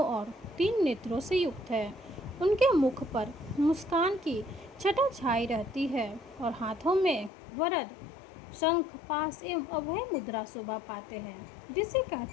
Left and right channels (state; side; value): drops out; right; at 7.3 s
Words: और 3 नेत्रों से युक्त है। उनके मुख पर मुस्कान की छटा छाई रहती है और हाथों में वरद शंख पास एवं अभय मुद्रा शोभा पाते हैं, जिसे